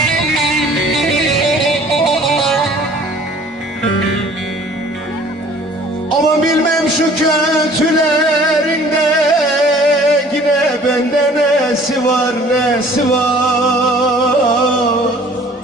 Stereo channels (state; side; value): normal; both; correlation 0.52